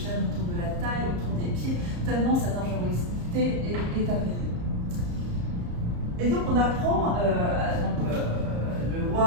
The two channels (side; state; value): left; late; 34 ms